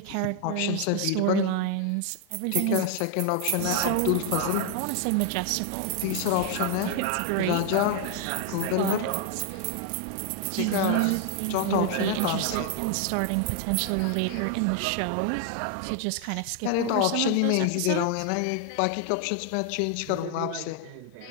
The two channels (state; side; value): different; both; correlation 0.00